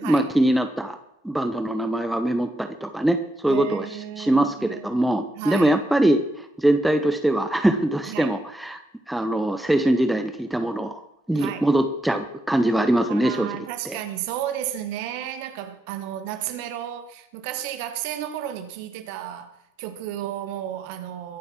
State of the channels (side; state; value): both; normal; correlation 0.82